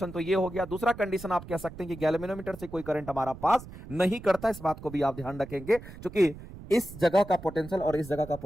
तो ये हो गया, दूसरा कंडीशन आप कह सकते हैं कि गैल्वेनोमीटर से कोई करंट हमारा पास नहीं करता। इस बात को भी आप ध्यान रखेंगे, क्योंकि इस जगह का पोटेंशियल और इस जगह का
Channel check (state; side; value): noise; right; rumble, 15 dB below the sound